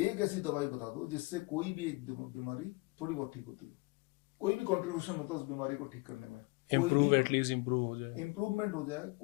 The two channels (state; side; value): quieter; right; 25.9 dB